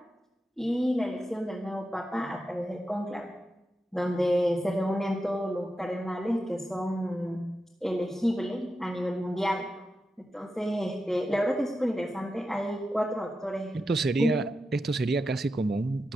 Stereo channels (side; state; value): both; normal; correlation 0.89